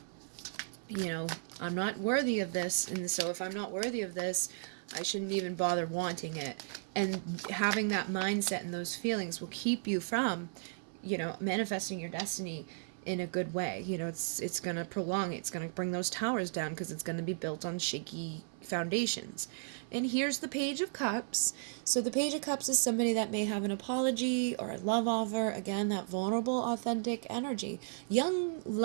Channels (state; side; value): silent; left; 55 dB below the other